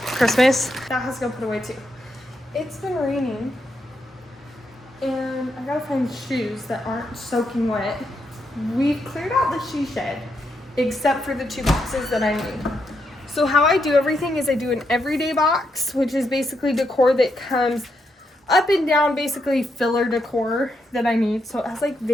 That has to go put away too. It's been raining, and I gotta find shoes that aren't soaking wet. We've cleared out the shoe shed, except for the 2 boxes that I need. So how I do everything is I do an everyday box, which is basically decor that comes up and down, basically filler decor that I need. So it has like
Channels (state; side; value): normal; both; correlation 0.81